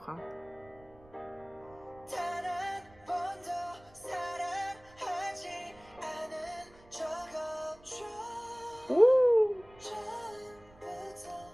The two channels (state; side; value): noise; right; rumble, 25 dB below the sound